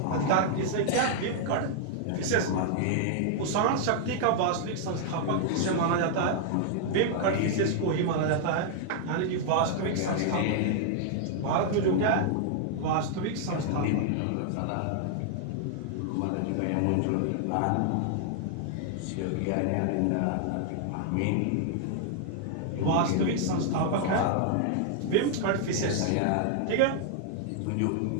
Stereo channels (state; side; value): different; both; correlation -0.01